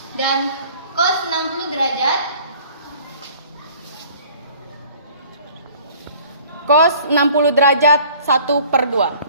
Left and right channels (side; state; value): both; inverted; correlation -0.51